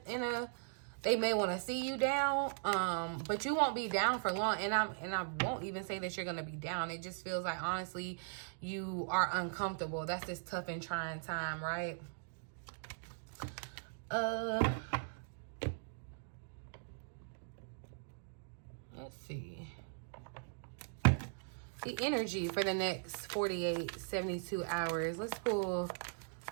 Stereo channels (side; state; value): left; silent; digital silence